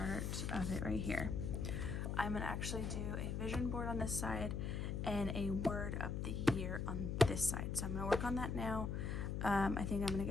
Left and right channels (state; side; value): noise; left; hum, 1 dB below the sound